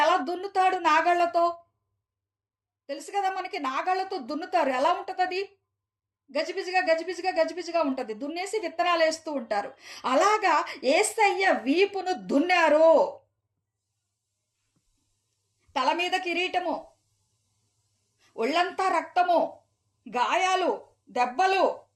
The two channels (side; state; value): both; identical; correlation 1.00